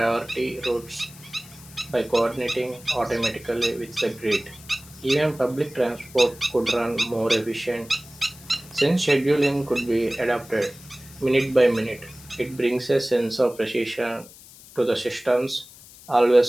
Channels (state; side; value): noise; left; hiss, 20 dB below the sound